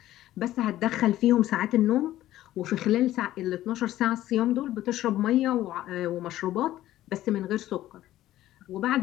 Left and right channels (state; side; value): quieter; right; 14.2 dB